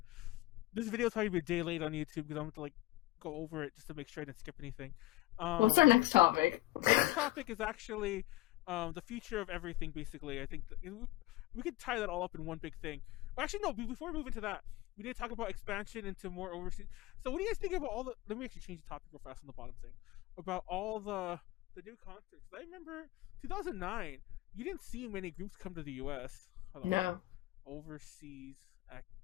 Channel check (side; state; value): right; quieter; 18.0 dB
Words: This video is probably be a day late on YouTube because I'm going to like go over it just to make sure I didn't skip anything. What's our next topic? The next topic is actually the future of everything, basically. I think we could tie that all up in one big thing. Well, actually, no, before we move into that, we need to talk about expansion into more overseas. So what do you guys think about all the... Let me actually change the topic real fast on the bottom thing. About all the new concerts. I remember 2009, you didn't see many groups come to the U.S. No. Overseas